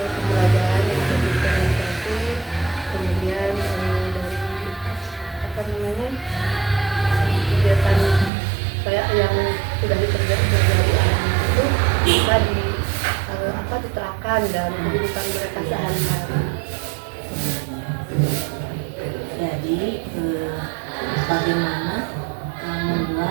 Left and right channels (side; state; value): left; drops out; at 8.3 s